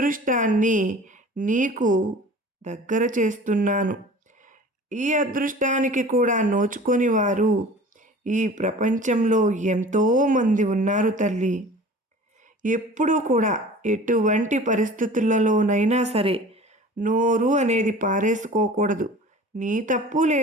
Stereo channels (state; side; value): normal; both; correlation 0.42